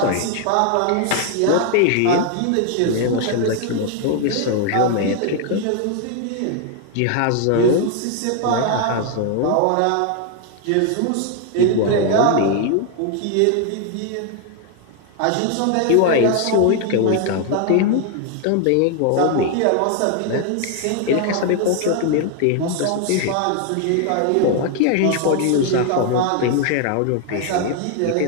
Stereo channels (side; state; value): both; different; correlation 0.00